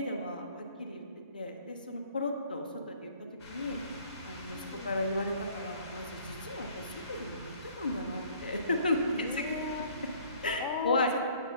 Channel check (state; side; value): inverted; both; correlation -0.56